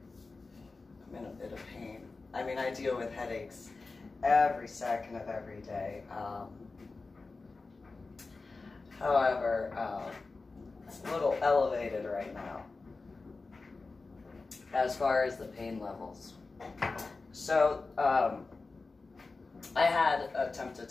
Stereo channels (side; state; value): right; quieter; 3.8 dB